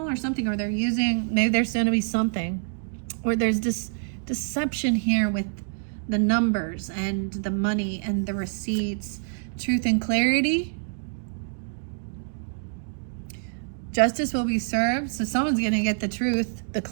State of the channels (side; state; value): left; silent; digital silence